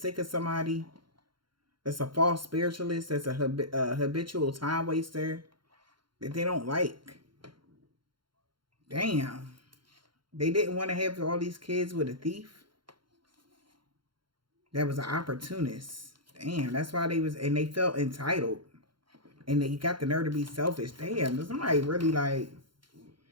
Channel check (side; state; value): left; late; 0.73 ms